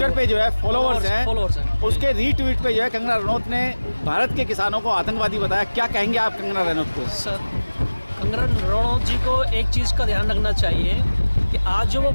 पे जो है फॉलोअर्स हैं। उसके रीट्वीट पे जो है कंगना रनौत ने भारत के किसानों को आतंकवादी बताया। क्या कहेंगे आप कंगना रनौत को? सर कंगना रनौत जी को एक चीज़ का ध्यान रखना चाहिए कि आज जो वो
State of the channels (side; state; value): both; inverted; correlation -1.00